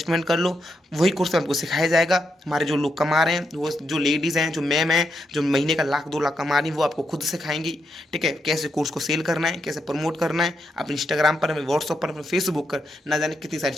कर लो, वही कोर्स में आपको सिखाया जाएगा। हमारे जो लोग कमा रहे हैं, वो जो लेडीज़ हैं, जो मैम हैं, जो महीने का 1-2 लाख कमा रही हैं, वो आपको खुद सिखाएंगी। ठीक है, कैसे कोर्स को सेल करना है, कैसे प्रमोट करना है अपने इंस्टाग्राम पर, अपने व्हाट्सअप पर, अपने फेसबुक पर, ना जाने कितनी सारी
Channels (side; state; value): both; normal; correlation 0.82